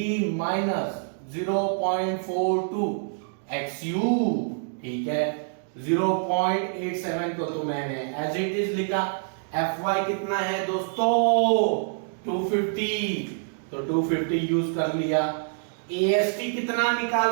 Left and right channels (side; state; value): left; silent; digital silence